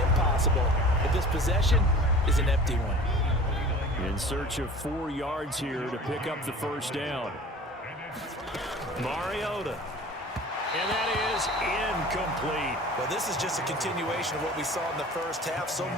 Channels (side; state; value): both; normal; correlation 0.42